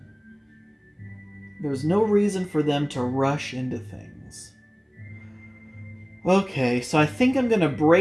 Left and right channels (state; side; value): identical; both; correlation 1.00